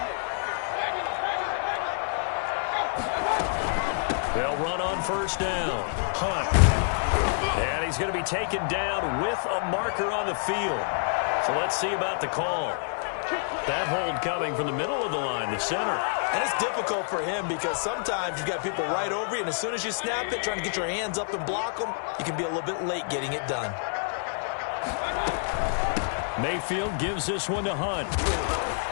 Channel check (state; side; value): silent; right; 57 dB below the other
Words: They'll run on first down. Hunt. And he's going to be taken down with a marker on the field. So let's see about the call. That hold coming from the middle of the line, the center. And it's difficult for him because sometimes you've got people right over you, and as soon as you snap it, trying to get your hands up and block them, you can be a little bit late getting it done. Mayfield gives this one to Hunt.